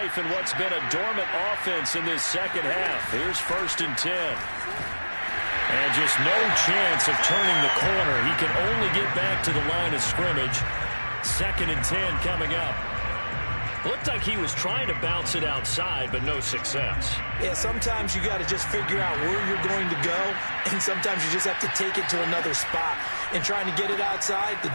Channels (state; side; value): inverted; both; correlation -1.00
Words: in what's been a dormant offense in this second half. Here's 1st and 10. And just no chance of turning the corner. He can only get back to the line of scrimmage. 2nd and 10 coming up. Looked like he was trying to bounce it outside, but no success. Yeah, sometimes you got to just figure out where you're going to go, and sometimes you just have to take it to another spot. And trying to get it outside, the